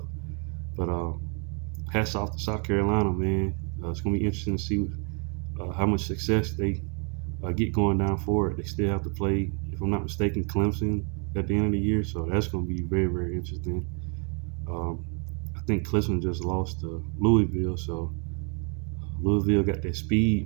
But hats off to South Carolina, man. It's gonna be interesting to see how much success they get going down forward. They still have to play, if I'm not mistaken, Clemson at the end of the year, so that's going to be very, very interesting. Um, I think Clemson just lost to Louisville, so Louisville got that speed,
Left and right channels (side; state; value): left; quieter; 37.7 dB